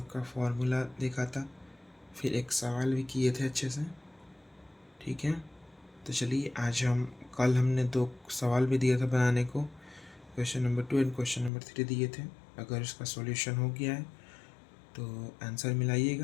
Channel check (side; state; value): right; drops out; at 11.5 s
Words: फॉर्मूला देखा था, फिर एक सवाल भी किए थे अच्छे से, ठीक है। तो चलिए आज कल हमने 2 सवाल भी दिया था बनाने को, question number 2 and question number 3 दिए थे। अगर इसका सॉल्यूशन हो गया है तो आंसर